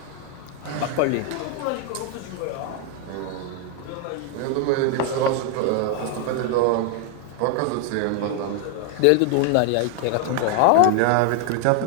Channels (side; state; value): both; different; correlation 0.01